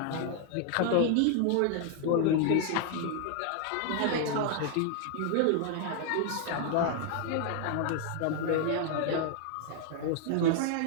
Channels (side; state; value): both; different; correlation 0.00